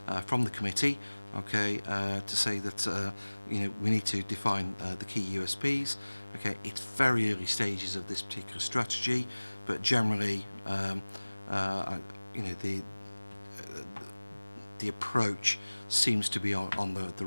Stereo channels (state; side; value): inverted; both; correlation -1.00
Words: the committee, okay, to say that you know, we need to define the key USPs. Okay, it's very early stages of this particular strategy, but generally, you know, the approach seems to be on the